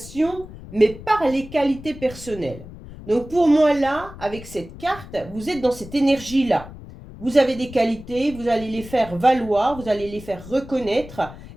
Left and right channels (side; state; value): left; noise; rumble, 16 dB below the sound